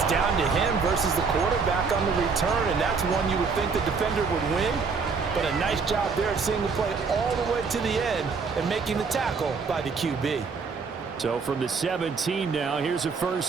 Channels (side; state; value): left; quieter; 5.1 dB